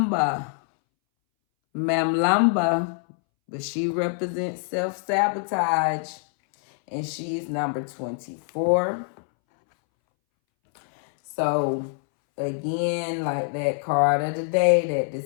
but she represents self-sabotage, and she's number 24. So again, like that card of the day, that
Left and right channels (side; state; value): right; silent; 62 dB below the other